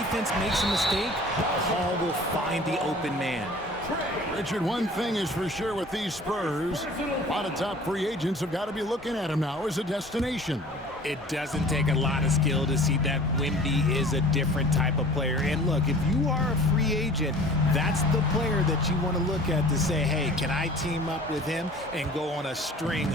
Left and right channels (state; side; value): normal; both; correlation 0.46